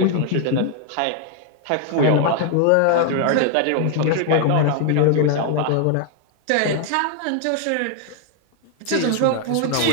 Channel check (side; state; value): both; different; correlation 0.00